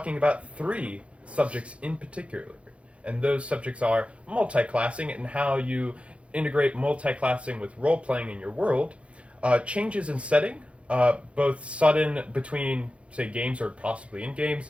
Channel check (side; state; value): left; late; 0.061 ms